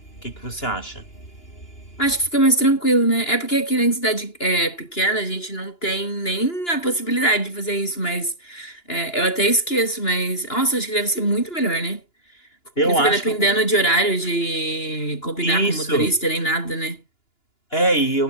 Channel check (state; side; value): late; right; 2.9 ms